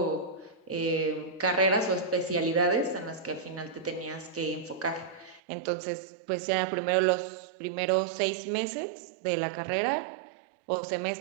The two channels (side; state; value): left; drops out; at 5.4 s